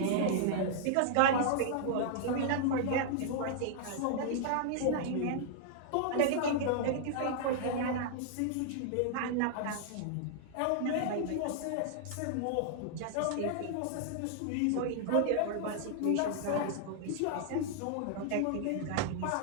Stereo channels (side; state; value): both; different; correlation -0.01